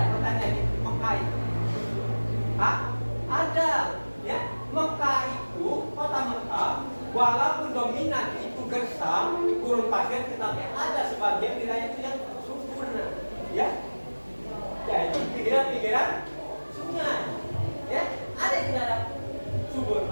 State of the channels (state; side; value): inverted; both; correlation -1.00